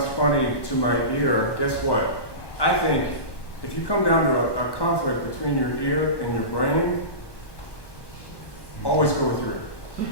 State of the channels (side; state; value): right; late; 1.1 ms